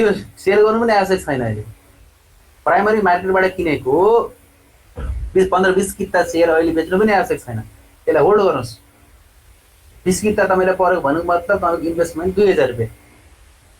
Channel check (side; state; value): both; identical; correlation 1.00